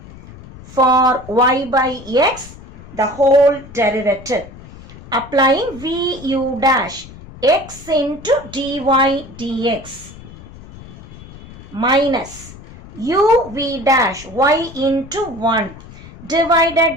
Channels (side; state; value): left; noise; rumble, 18 dB below the sound